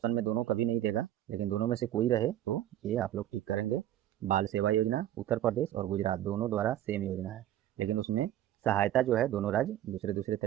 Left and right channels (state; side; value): quieter; left; 12.4 dB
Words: में दोनों कभी नहीं देगा, लेकिन दोनों में से कोई रहे तो ये आप लोग टिक करेंगे। बाल सेवा योजना उत्तर प्रदेश और गुजरात दोनों द्वारा सेम योजना है, लेकिन उसमें सहायता जो है दोनों राज्य दूसरे दूसरे